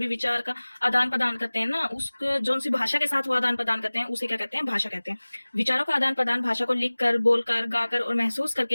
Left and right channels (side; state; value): both; inverted; correlation -1.00